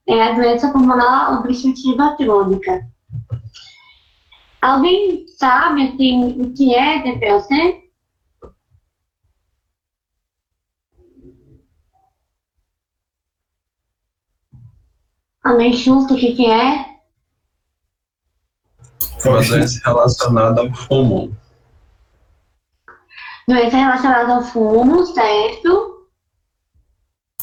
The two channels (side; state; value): both; identical; correlation 1.00